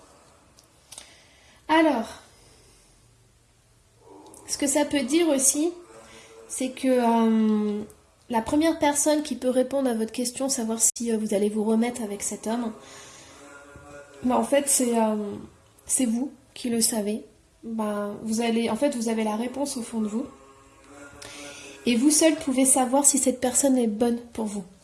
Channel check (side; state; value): both; identical; correlation 1.00